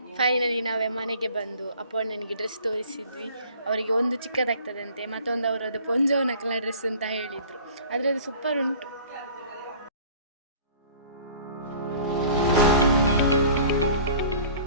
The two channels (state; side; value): inverted; both; correlation -0.47